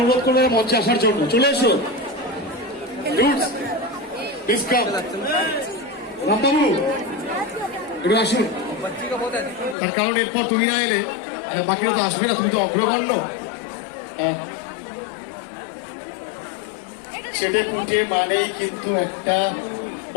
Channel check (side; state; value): right; drops out; at 9.8 s